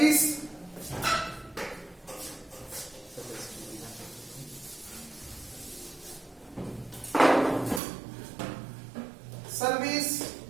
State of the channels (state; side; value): drops out; left; at 7.8 s